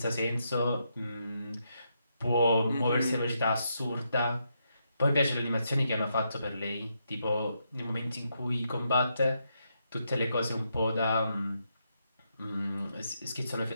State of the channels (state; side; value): inverted; both; correlation -0.80